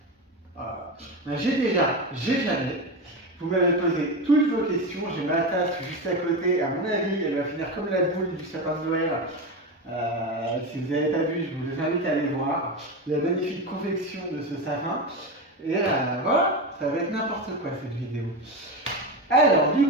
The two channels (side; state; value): both; normal; correlation 0.19